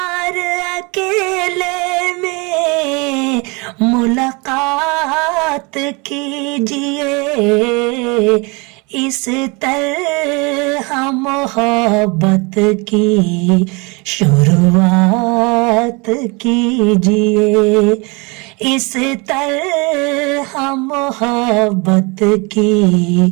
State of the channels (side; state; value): left; quieter; 28.6 dB